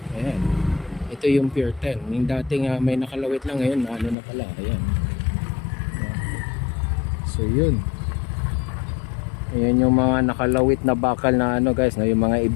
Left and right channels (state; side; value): drops out; right; at 4.2 s